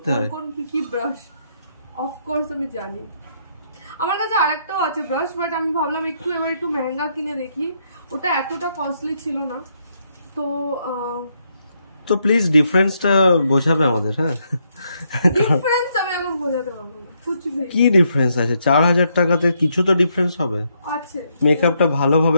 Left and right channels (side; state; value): both; inverted; correlation -0.76